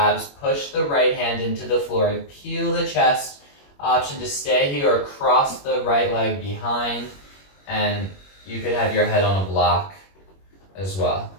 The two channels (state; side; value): late; right; 21 ms